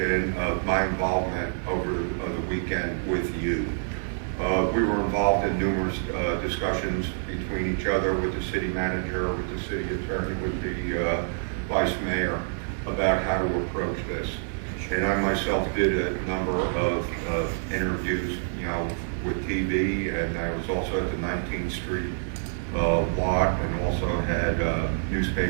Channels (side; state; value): left; silent; digital silence